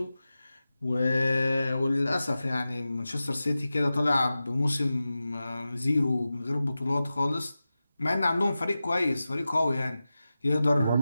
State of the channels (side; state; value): both; inverted; correlation -0.94